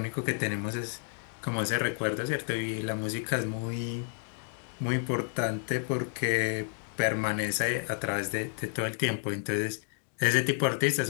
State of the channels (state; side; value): silent; right; 57 dB below the other